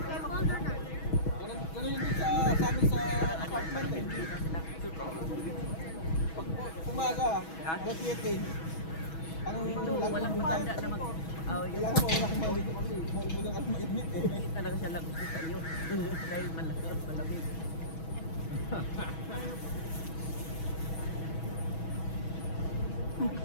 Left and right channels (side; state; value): right; late; 6.2 ms